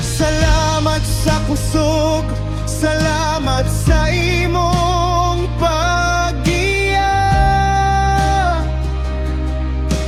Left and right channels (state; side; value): identical; both; correlation 1.00